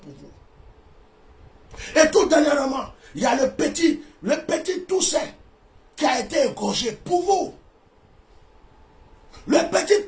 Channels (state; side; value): identical; both; correlation 1.00